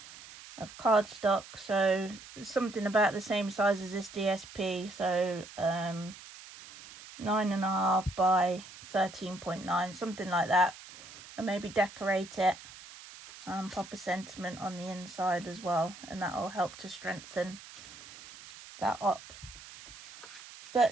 cardstock. So something about the same size as this DSP, so 9.5 by 13.9, something like that. And maybe decorate it, pop a sentiment on the inside as well, and that will help to strengthen that up.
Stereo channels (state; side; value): noise; right; hiss, 17 dB below the sound